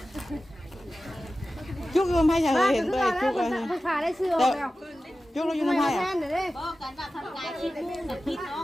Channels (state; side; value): normal; both; correlation 0.95